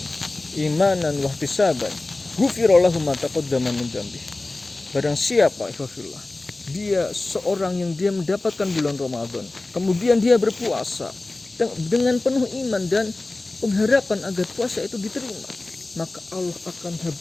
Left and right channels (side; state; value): right; quieter; 3.0 dB